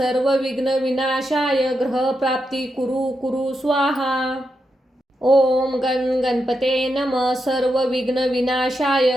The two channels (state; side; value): normal; both; correlation 0.85